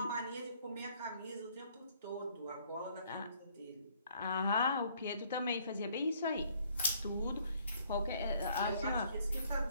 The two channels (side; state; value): both; inverted; correlation -0.63